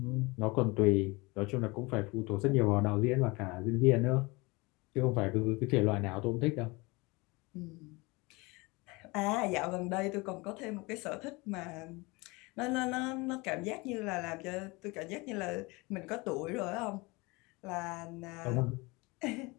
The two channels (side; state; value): right; quieter; 25.2 dB